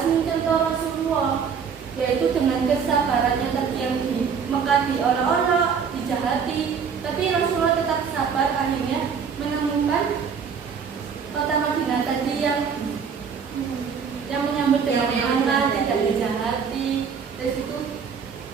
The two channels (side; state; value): left; quieter; 6.5 dB